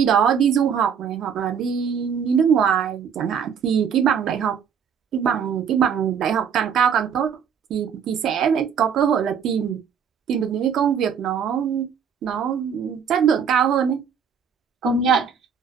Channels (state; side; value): quieter; left; 7.3 dB